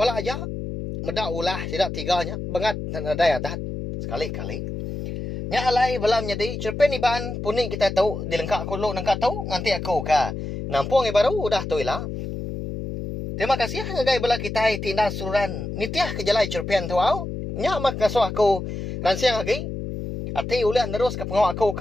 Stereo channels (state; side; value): noise; left; hum, 6 dB below the sound